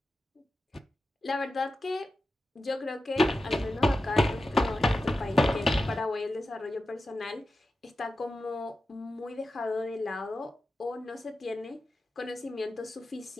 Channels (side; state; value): both; normal; correlation 0.92